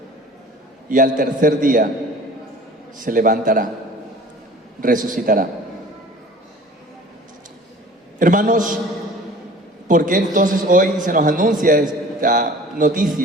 Y al tercer día se levantará, resucitará. Hermanos, ¿por qué entonces hoy se nos anuncia esta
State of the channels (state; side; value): normal; both; correlation 0.45